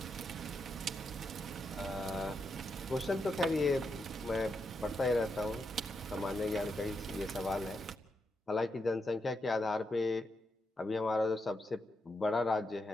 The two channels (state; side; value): normal; both; correlation 0.84